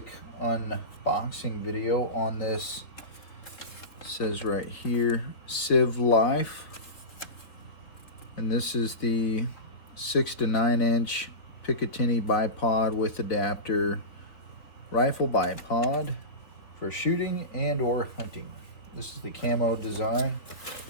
unboxing video on this. It says right here, CVLife. And this is the 6 to 9 inch Picatinny bipod with adapter rifle bipod for shooting and or hunting. This is the camo design.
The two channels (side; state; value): right; late; 3.5 ms